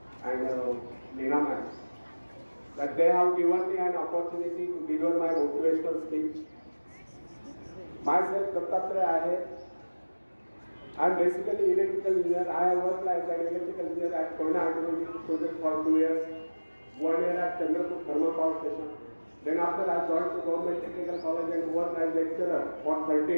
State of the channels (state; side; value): inverted; both; correlation -1.00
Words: and Neena ma'am, that they have given me an opportunity to deliver my motivational speech. Myself, Dattatreya Ahir. I am basically electrical engineer. I have worked as an electrical engineer at Koyna Hydroelectric project for 2 years, 1 year at Chandrapur Thermal Power Station. Then after I joined the Government Technical College and worked as lecturer for 30